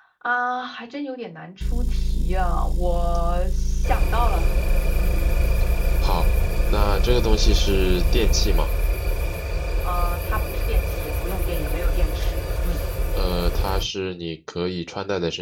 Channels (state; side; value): identical; both; correlation 1.00